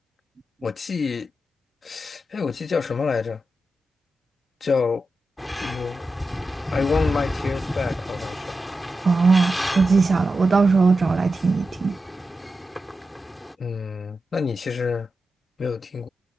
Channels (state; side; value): normal; both; correlation 0.90